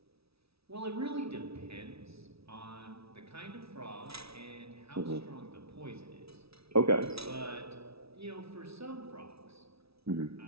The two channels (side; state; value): left; late; 0.77 ms